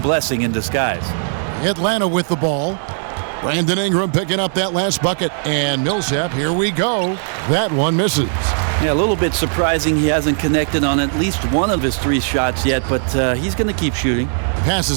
blessing in disguise. Atlanta with the ball. Brandon Ingram picking up that last bucket. And Millsap, here we go. That one misses. Yeah, a little bit surprising he hasn't connected on at least one of his 3 shots yet, but he's going to keep shooting.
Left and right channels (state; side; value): silent; left; digital silence